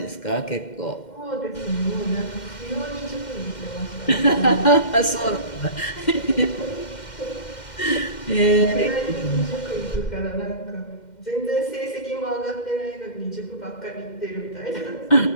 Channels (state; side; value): late; right; 2.1 ms